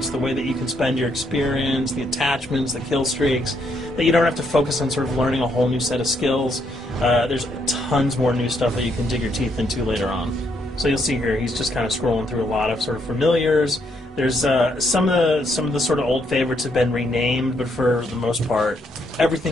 the way that you can spend your experience, the attachments, the kill streaks, that you don't have to focus on sort of learning a whole new set of skills. There's tons more new stuff that you can dig your teeth into later on. So you'll see here, he's just kind of scrolling through a lot of sort of familiars. There's some of the sort of old favorites have been renamed, but for the most part,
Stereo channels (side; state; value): both; normal; correlation 0.74